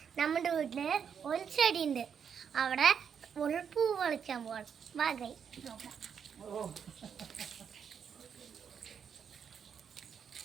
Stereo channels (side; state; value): left; quieter; 7.4 dB